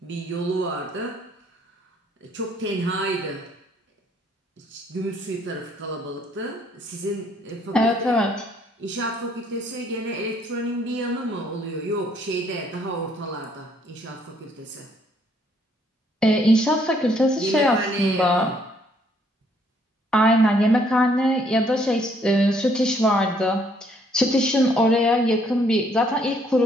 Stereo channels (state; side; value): normal; both; correlation 0.66